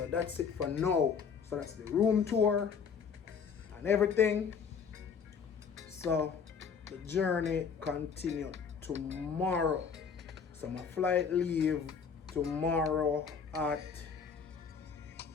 that's it for now. So that's the room tour and everything. So the journey continues tomorrow. So my flight leave tomorrow at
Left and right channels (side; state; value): right; quieter; 6.3 dB